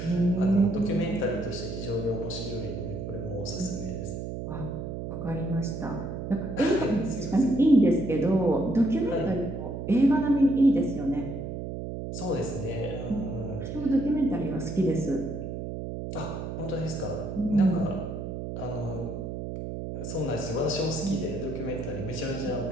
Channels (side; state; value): right; noise; hum, 6 dB below the sound